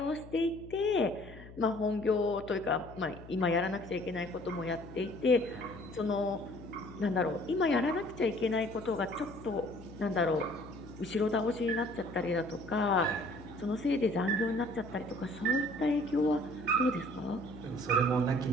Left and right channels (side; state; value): left; noise; hum, 17 dB below the sound